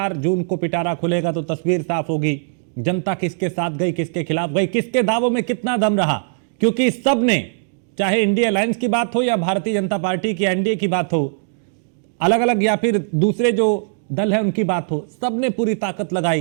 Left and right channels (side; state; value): left; silent; digital silence